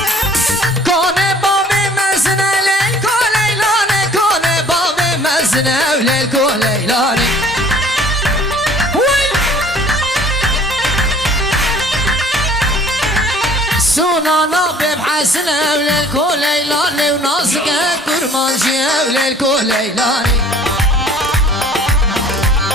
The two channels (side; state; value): both; normal; correlation 0.53